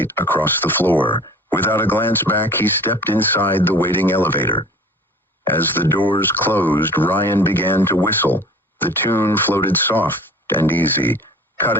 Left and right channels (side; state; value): both; normal; correlation 0.44